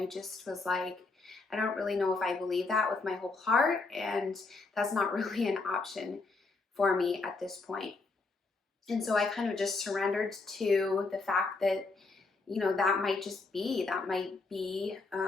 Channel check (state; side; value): quieter; right; 3.8 dB